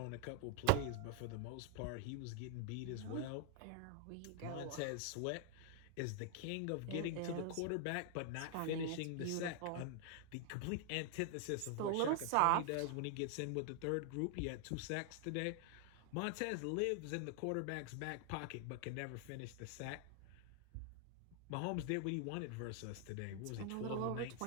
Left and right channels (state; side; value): different; both; correlation 0.00